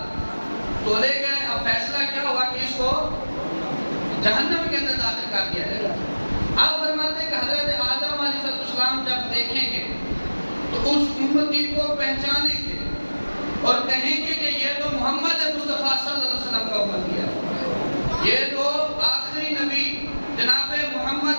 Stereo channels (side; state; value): both; inverted; correlation -1.00